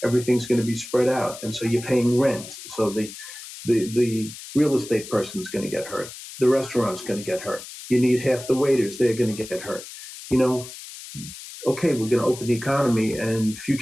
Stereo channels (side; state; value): left; noise; hiss, 13 dB below the sound